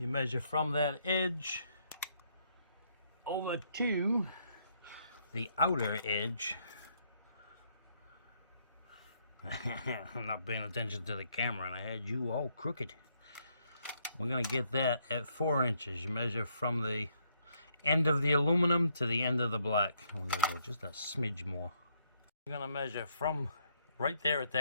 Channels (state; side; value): inverted; both; correlation -0.72